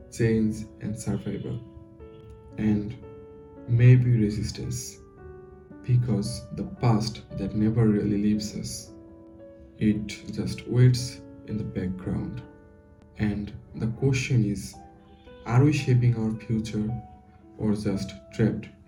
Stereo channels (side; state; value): both; identical; correlation 1.00